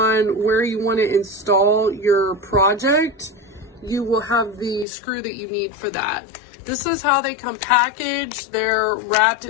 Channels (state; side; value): drops out; right; at 4.9 s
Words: where you want to install your project, you will have the screw that you need for that. This is how they come packaged. They're wrapped